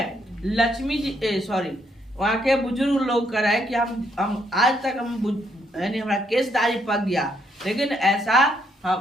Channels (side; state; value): both; normal; correlation 0.73